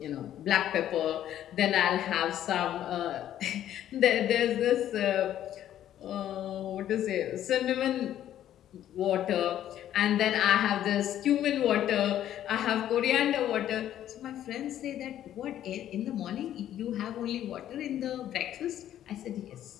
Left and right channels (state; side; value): quieter; right; 11.5 dB